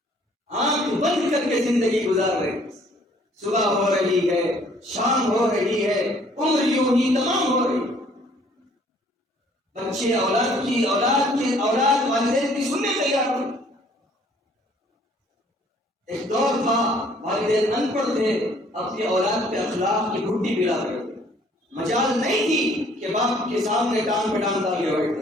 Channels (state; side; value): normal; both; correlation 0.60